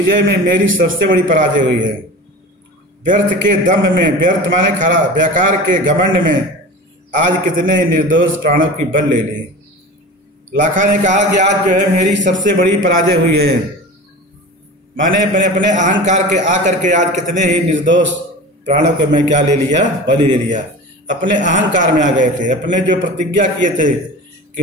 में मेरी सबसे बड़ी पराजय हुई है। व्यर्थ के दम्भ में, व्यर्थ माने खरा, बेकार के घमंड में आज कितने निर्दोष प्राणों की बल ले ली। लाखा ने कहा कि आज जो है मेरी सबसे बड़ी पराजय हुई है। मैंने अपने अहंकार के आकर के आज कितने ही निर्दोष प्राणों को मैं क्या ले लिया? बलि ले लिया। अपने अहंकार में आ गए थे। अपने जो प्रतिज्ञा किए थे कि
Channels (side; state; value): both; normal; correlation 0.34